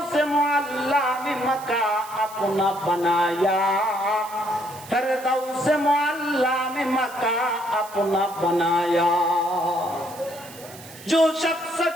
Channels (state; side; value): noise; right; hiss, 18 dB below the sound